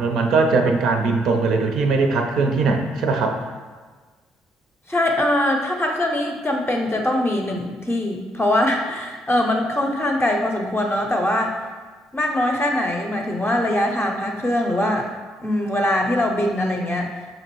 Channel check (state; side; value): normal; both; correlation 0.73